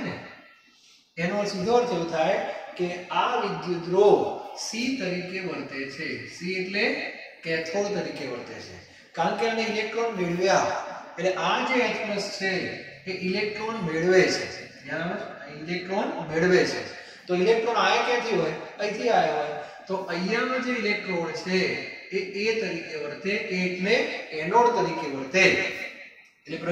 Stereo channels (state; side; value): identical; both; correlation 1.00